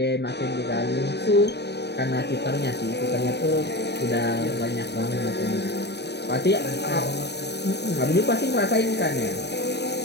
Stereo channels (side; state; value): right; late; 0.49 ms